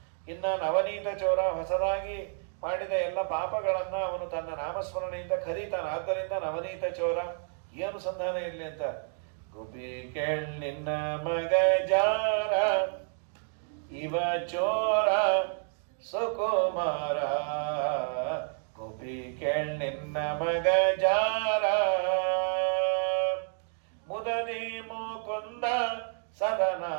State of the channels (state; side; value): silent; left; 57 dB below the other